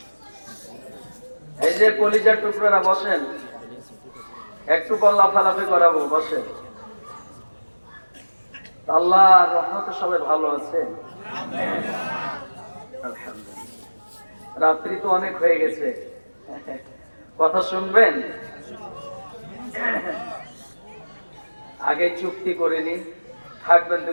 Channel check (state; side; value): inverted; both; correlation -1.00